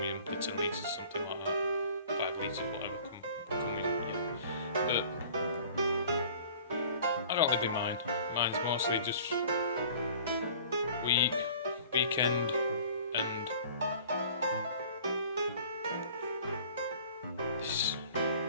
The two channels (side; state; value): both; inverted; correlation -0.48